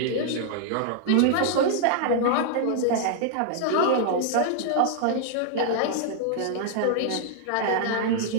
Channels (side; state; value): both; different; correlation -0.01